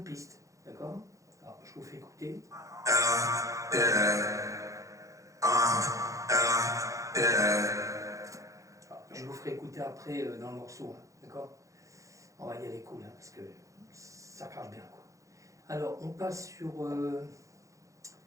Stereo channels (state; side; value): late; left; 0.15 ms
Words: piste. D'accord. Alors, je vous fais écouter. Alors, je vous ferai écouter après dans le morceau. Hein, d'accord. On va y aller cool, hein, parce que ça crache bien. Quoi. Alors, on passe sur